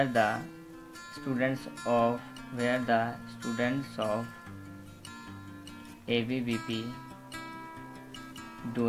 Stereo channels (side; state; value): both; identical; correlation 1.00